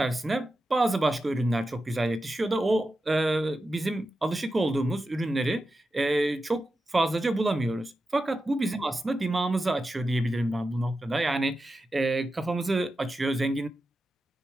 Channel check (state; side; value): normal; both; correlation 0.91